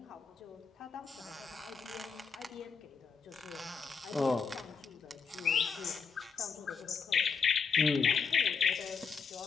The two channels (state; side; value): quieter; right; 5.7 dB